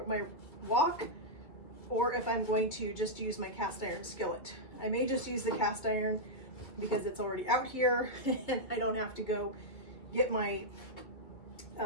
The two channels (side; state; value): right; late; 2.1 ms